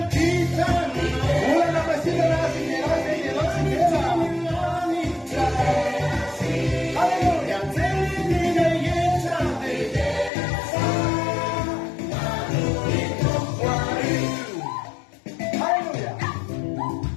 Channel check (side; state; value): right; drops out; at 10.3 s